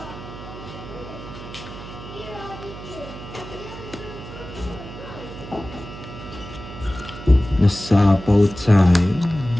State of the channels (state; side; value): noise; right; hum, 13 dB below the sound